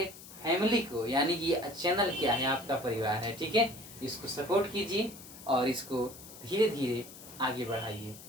फैमिली को, यानी कि ये चैनल क्या है, आपका परिवार है, ठीक है, इसको सपोर्ट कीजिए और इसको धीरे धीरे आगे बढ़ाइए,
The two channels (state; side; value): noise; left; hiss, 16 dB below the sound